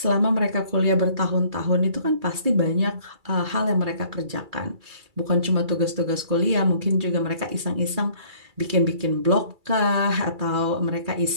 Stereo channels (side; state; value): left; late; 2.3 ms